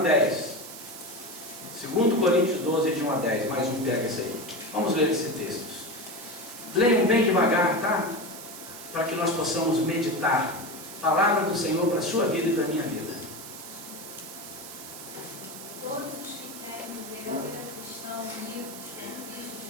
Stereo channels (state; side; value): noise; right; hiss, 13 dB below the sound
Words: 2 Coríntios 12, de 1 a 10. Mais um pega esse aí. Vamos ler esse texto. Leiam bem devagar, tá? Para que nós possamos meditar. Palavra do Senhor para a sua vida e para a minha vida. Todos os que querem viver a vida cristã unidos com Cristo